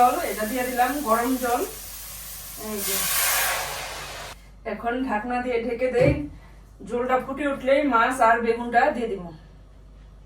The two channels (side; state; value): both; identical; correlation 1.00